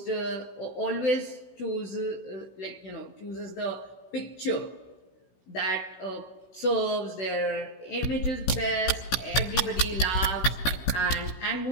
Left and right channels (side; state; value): right; late; 16 ms